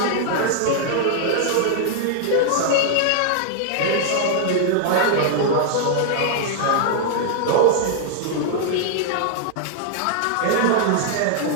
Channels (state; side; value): different; both; correlation -0.01